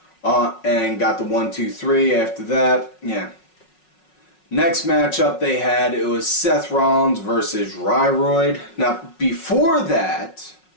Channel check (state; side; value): late; right; 5.4 ms